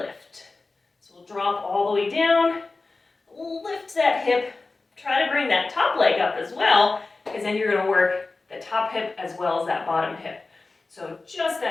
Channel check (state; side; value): quieter; right; 3.6 dB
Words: So we'll drop all the way down, lift that hip, try to bring that top leg up as well, because then you're going to work the top hip as well as that bottom hip. So just